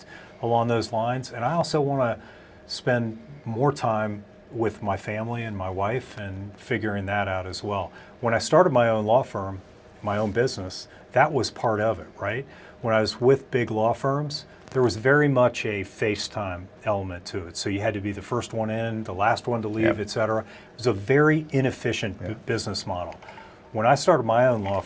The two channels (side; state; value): both; identical; correlation 1.00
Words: along those lines. And I also want to spend more time with my family and my wife and figuring that out as well. When I started my own law firm, my own business, that was part of it, right? When I was with big law firms, there was very much a FaceTime element to it. So you had to be the first one in, the last one to leave, et cetera. It was a very inefficient business model. When I started my own law